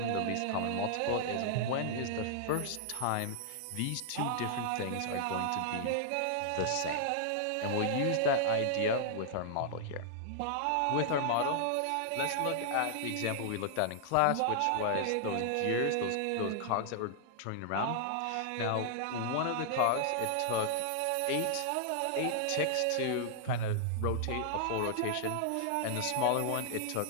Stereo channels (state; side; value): different; both; correlation -0.01